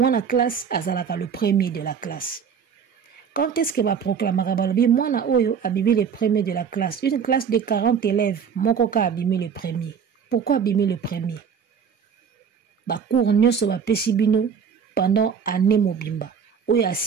la classe, azalaka le premier de la classe? Quand est-ce que va proclamer moi, na oyo, abimi le premier de la classe? Une classe de 40 élèves, mon coca abimi le premier. Pourquoi abimi le premier? Ba cours nyoso ba pesibino pendant année mobimba. Oyo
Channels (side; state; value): left; quieter; 7.0 dB